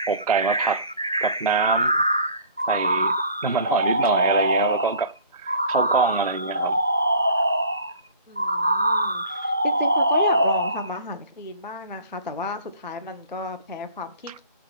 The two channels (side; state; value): both; inverted; correlation -0.47